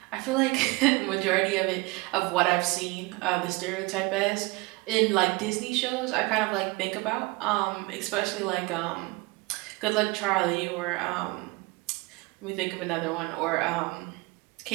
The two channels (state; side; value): quieter; left; 24.5 dB